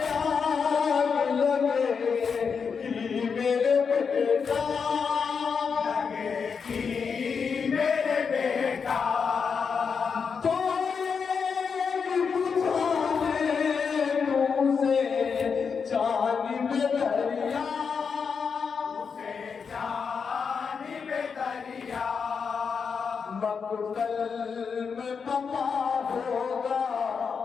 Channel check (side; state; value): right; quieter; 5.9 dB